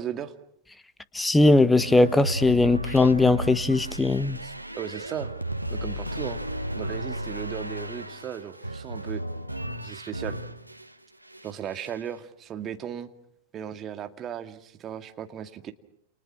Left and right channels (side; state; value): both; normal; correlation 0.71